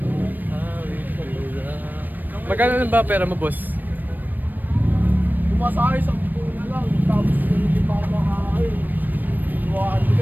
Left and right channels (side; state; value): left; late; 0.089 ms